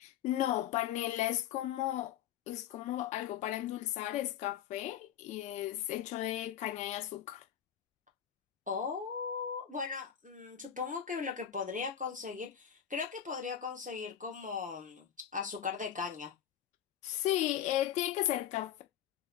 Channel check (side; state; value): right; quieter; 9.8 dB